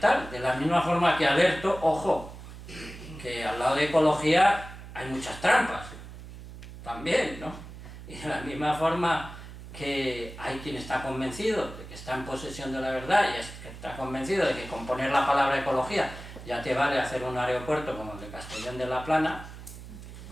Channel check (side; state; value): right; noise; hum, 14 dB below the sound